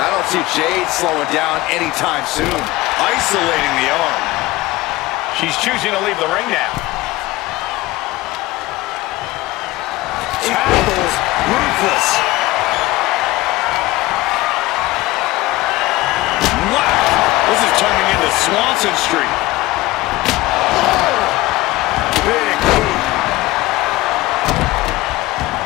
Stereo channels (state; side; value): quieter; right; 19.0 dB